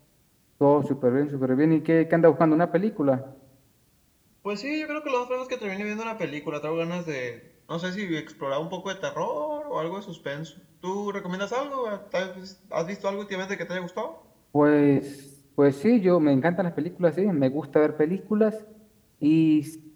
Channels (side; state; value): both; identical; correlation 1.00